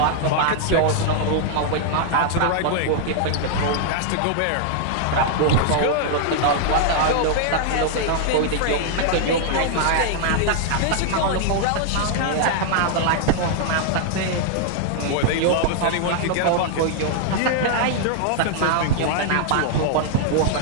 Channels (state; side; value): different; both; correlation -0.01